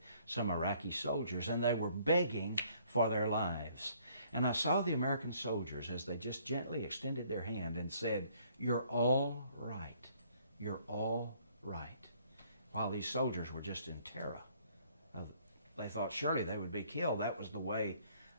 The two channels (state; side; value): inverted; both; correlation -0.62